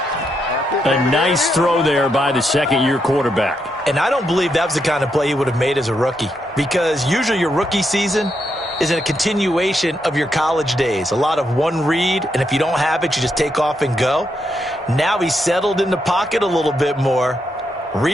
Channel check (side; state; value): both; normal; correlation 0.81